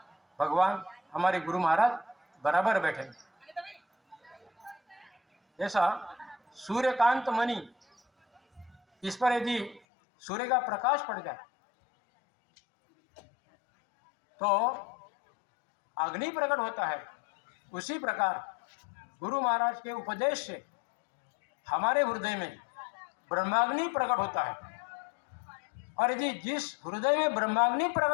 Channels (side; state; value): right; drops out; at 9.8 s